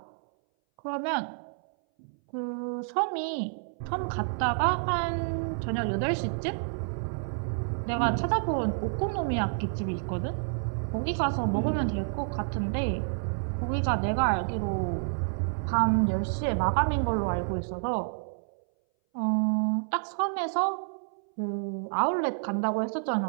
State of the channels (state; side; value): silent; left; 58 dB below the other